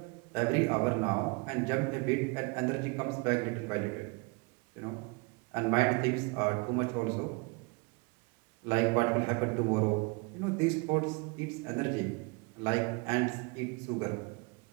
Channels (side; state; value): left; quieter; 29.3 dB